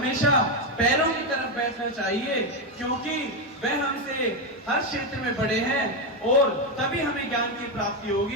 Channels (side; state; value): both; normal; correlation 0.08